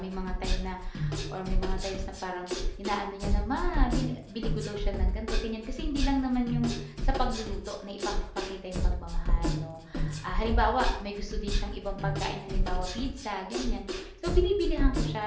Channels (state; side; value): identical; both; correlation 1.00